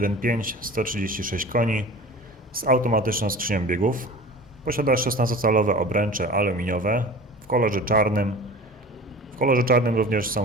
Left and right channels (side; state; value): both; normal; correlation 0.38